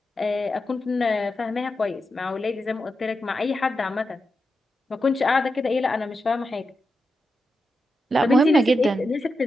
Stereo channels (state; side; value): normal; both; correlation 0.88